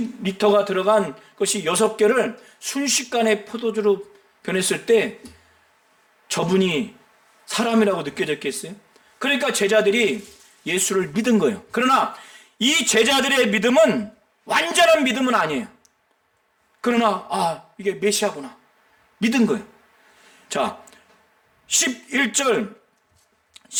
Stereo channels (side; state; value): both; identical; correlation 1.00